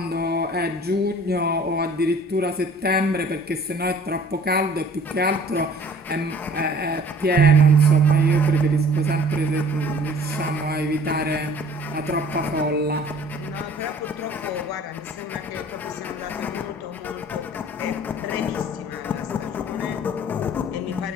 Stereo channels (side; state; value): both; normal; correlation 0.50